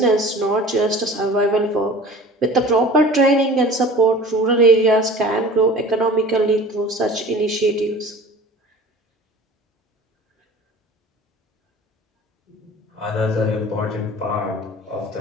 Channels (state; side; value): normal; both; correlation 0.42